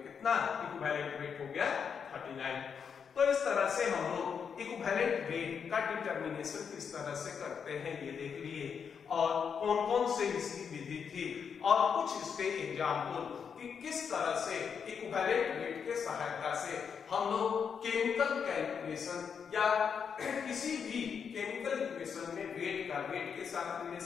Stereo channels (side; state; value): right; quieter; 6.8 dB